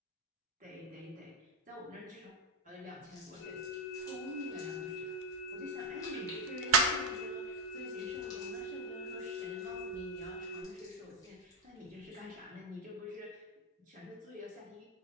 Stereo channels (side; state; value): both; normal; correlation 0.09